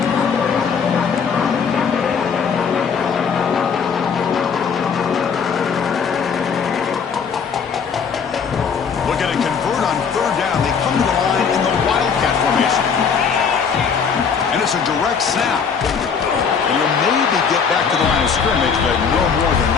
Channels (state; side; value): quieter; right; 6.3 dB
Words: A direct snap. And will maybe get back to the line of scrimmage, but no more than